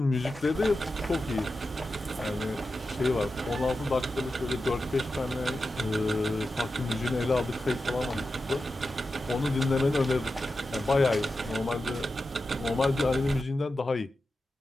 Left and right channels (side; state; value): both; normal; correlation 0.91